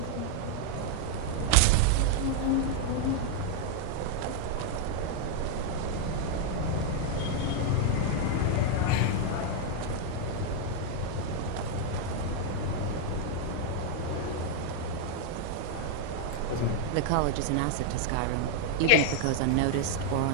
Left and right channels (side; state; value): both; different; correlation 0.00